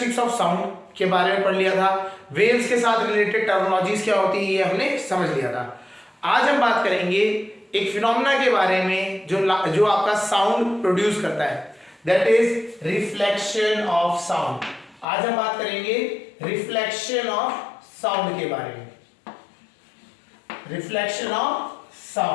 ऑफ साउंड के बारे में पढ़ लिया था। वेव्स के साथ रिलेटेड टर्मिनोलॉजीज क्या होती है ये हमने समझ लिया था। आज हम बात करेंगे एक फिनोमेना के बारे में जो आपका साउंड प्रोड्यूस करता है, that is reflection of sound. आज हम बात करेंगे रिफ्लेक्शन ऑफ साउंड के बारे में। Reflection of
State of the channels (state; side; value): drops out; right; at 15.1 s